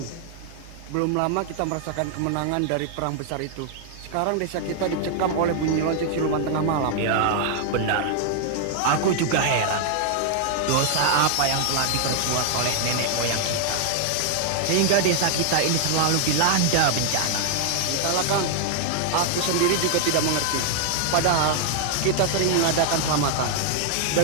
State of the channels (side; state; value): both; different; correlation 0.00